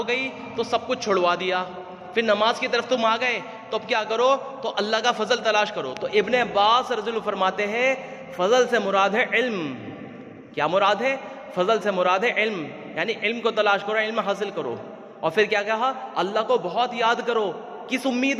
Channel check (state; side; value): identical; both; correlation 1.00